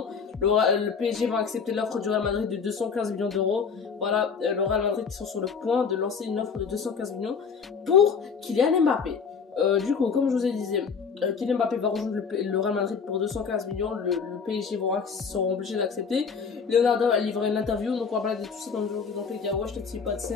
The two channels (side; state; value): right; quieter; 5.8 dB